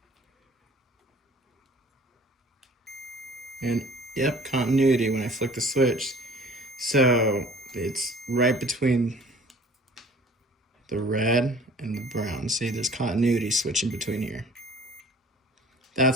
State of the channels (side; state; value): both; normal; correlation 0.50